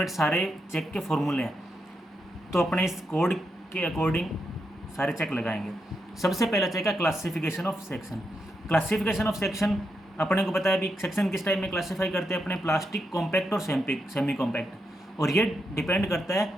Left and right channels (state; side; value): normal; both; correlation 0.83